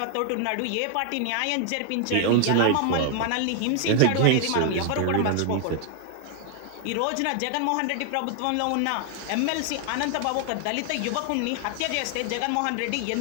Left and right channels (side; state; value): both; different; correlation 0.00